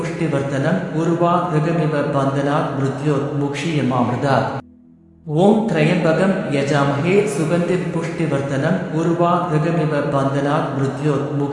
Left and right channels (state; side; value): identical; both; correlation 1.00